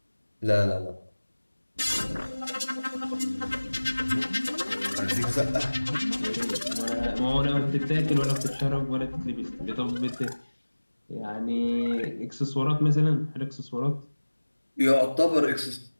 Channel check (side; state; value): both; inverted; correlation -1.00